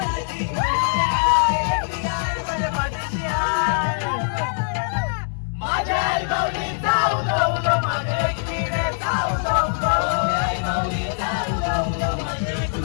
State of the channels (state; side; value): silent; right; digital silence